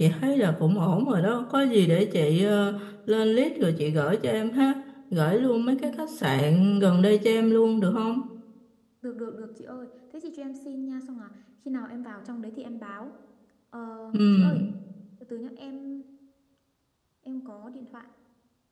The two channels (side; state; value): both; identical; correlation 1.00